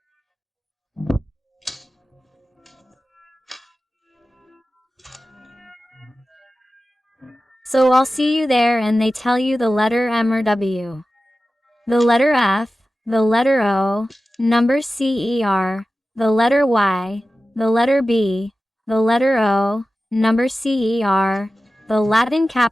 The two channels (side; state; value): both; normal; correlation 0.94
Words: So I'll see you there and they tell you the letter M or W. The letter F, the letter O, number CER, the letter Y, the letter B, the letter O, number CER, the Latin